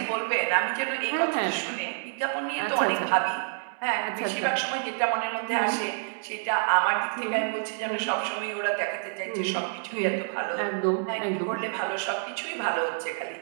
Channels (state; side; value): silent; left; 59 dB below the other